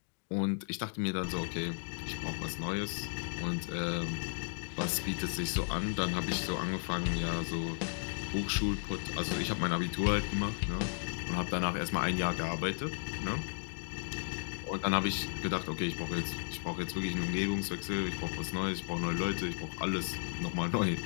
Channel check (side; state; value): right; silent; digital silence